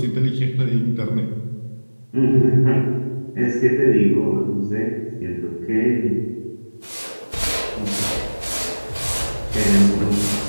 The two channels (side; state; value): both; inverted; correlation -1.00